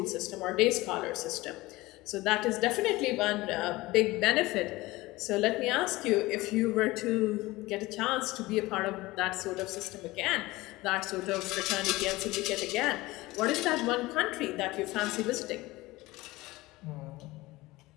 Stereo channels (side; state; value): right; quieter; 19.9 dB